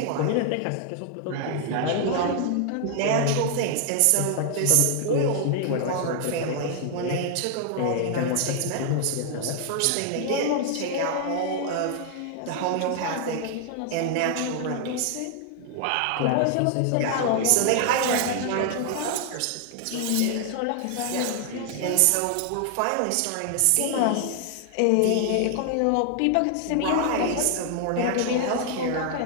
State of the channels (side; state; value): both; different; correlation 0.00